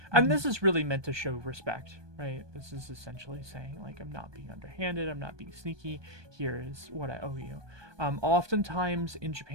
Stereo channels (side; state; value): left; late; 1.2 ms